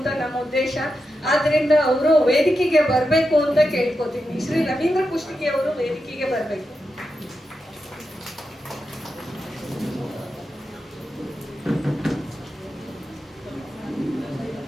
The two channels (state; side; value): normal; both; correlation 0.88